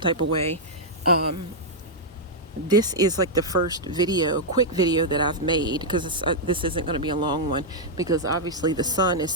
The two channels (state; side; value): normal; both; correlation -0.06